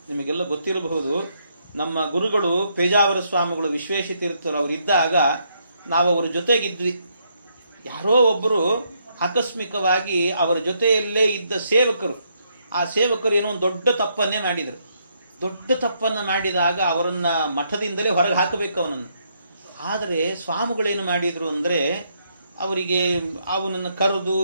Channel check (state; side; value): inverted; both; correlation -0.75